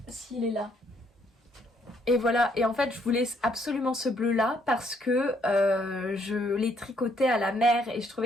S'il est là. Et voilà, et en fait je voulais absolument ce bleu là parce que je l'ai tricoté à la mer et je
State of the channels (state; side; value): normal; both; correlation 0.69